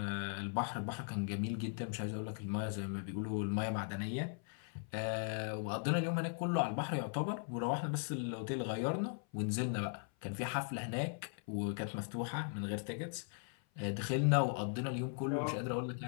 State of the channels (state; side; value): silent; right; 52 dB below the other